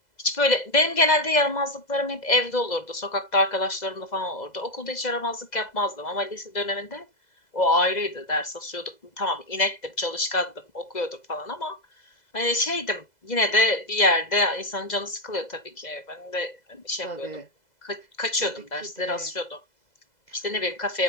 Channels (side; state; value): right; late; 2.0 ms